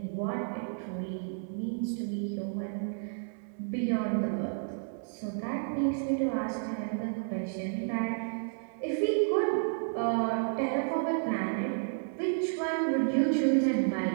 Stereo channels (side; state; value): left; silent; 57 dB below the other